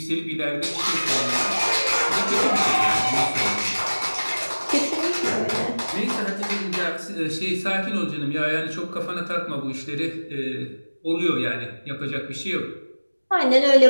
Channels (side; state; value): both; inverted; correlation -1.00